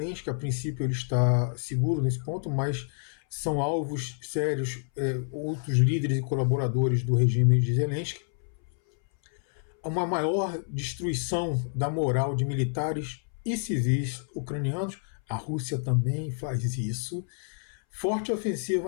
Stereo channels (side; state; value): right; silent; 59 dB below the other